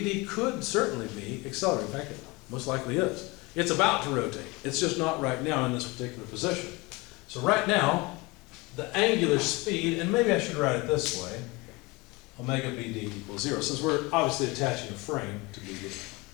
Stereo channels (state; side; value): quieter; right; 23.9 dB